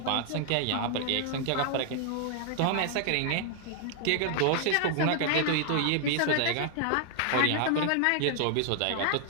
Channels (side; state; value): both; different; correlation 0.00